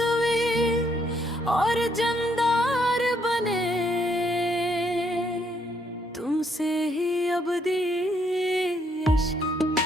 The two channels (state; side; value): normal; both; correlation 0.72